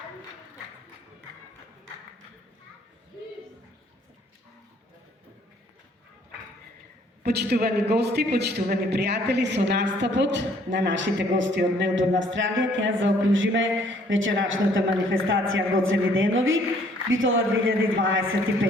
Почитувани гости, почитувани пријатели, со настапот на нашите гости од Мелбурн, Австралија, ќе заокружиме вечерашната манифестација Гоцеви денови, Битола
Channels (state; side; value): normal; both; correlation 0.62